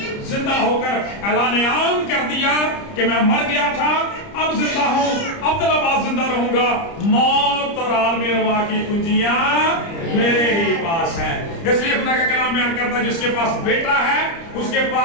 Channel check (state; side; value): late; right; 30 ms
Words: زندہ ہو کر اعلان عام کر دیا کہ میں مر گیا تھا، اب زندہ ہوں، ابدالآباد زندہ رہوں گا، موت اور عالم ارواح کی کنجیاں میرے ہی پاس ہیں۔ اس لیے خدا کا کلام بیان کرتا ہے جس کے پاس بیٹا ہے اس کے